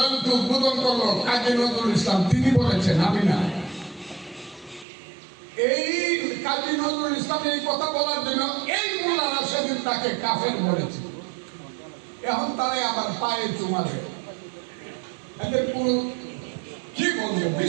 উদ্বোধন করলো কাজী নজরুল ইসলাম, তিনি বলেছেন, আমি না। এই কাজী নজরুল ইসলাম এই কথা বলার জন্য এই মোল্লারা সেদিন তাকে কাফের বলেছে। এখন তারাই আবার পায়ে চুমা দেয়। এদের কোনো কি বলবো,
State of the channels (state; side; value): drops out; left; at 4.9 s